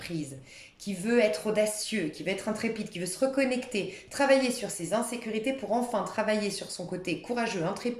qui veut être audacieux, qui veut être intrépide, qui veut se reconnecter, travailler sur ses insécurités pour enfin travailler sur son côté courageux,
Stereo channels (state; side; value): identical; both; correlation 1.00